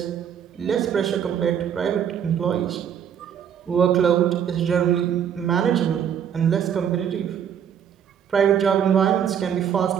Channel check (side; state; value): left; quieter; 8.6 dB